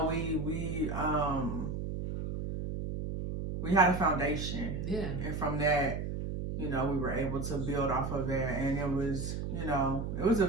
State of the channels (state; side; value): noise; right; hum, 4 dB below the sound